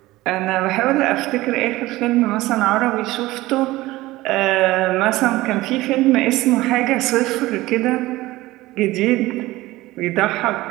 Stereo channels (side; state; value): left; quieter; 18.3 dB